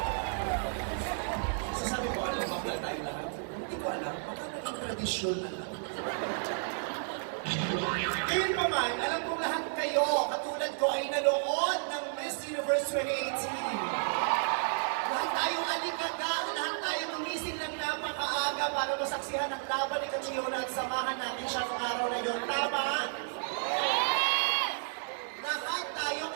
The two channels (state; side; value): silent; left; digital silence